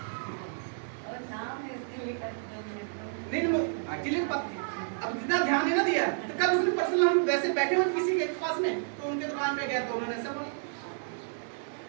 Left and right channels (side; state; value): left; silent; 57 dB below the other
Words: नहीं, एक्चुअली अब जितना ध्यान नहीं ना दिया। तो कल उसने पर्सनल, हम वैसे बैठे हुए किसी के पास में, तो उनके दुकान पे गए तो उन्होंने ऐसा बोला।